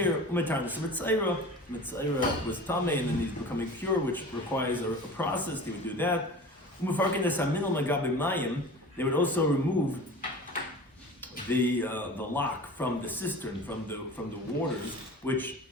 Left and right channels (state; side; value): normal; both; correlation 0.37